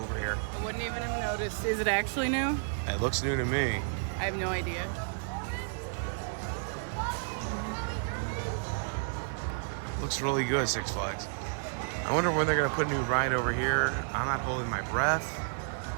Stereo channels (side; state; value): left; silent; digital silence